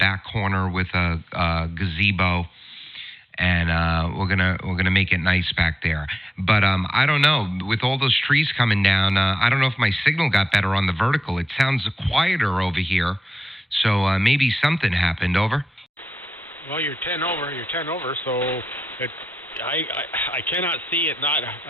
corner with a gazebo, and we're gonna make it nice back there. But I don't know. With all those trees coming down, I don't know if my signal got better on the vertical. It sounds quieter over here. So maybe something happened. Over. Well, you're 10 over, so I cannot see it not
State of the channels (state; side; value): normal; both; correlation 0.90